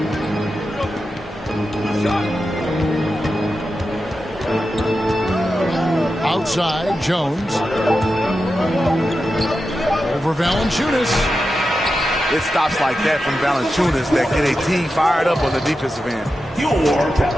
Outside, Jones. Over Valanciunas. It stops like that from Valanciunas that get a team fired up on the defensive end. Your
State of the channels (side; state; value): both; normal; correlation 0.90